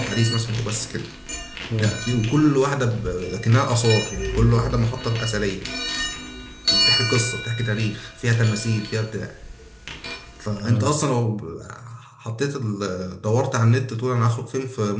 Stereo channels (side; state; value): both; identical; correlation 1.00